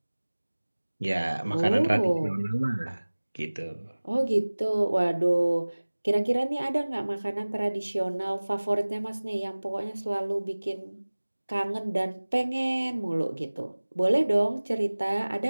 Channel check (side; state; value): both; inverted; correlation -1.00